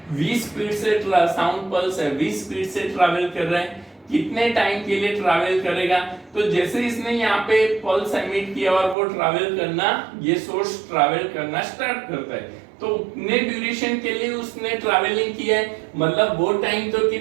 v स्पीड से, साउंड पल्स है v स्पीड से ट्रैवल कर रहा है, कितने टाइम के लिए ट्रैवल करेगा, तो जैसे इसने यहाँ पे पल्स एमिट किया और वो ट्रैवल करना, ये सोर्स ट्रैवल करना स्टार्ट करता है, तो उतने ड्यूरेशन के लिए उसने ट्रैवलिंग किया है, मतलब वो टाइम तो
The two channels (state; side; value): drops out; left; at 9.0 s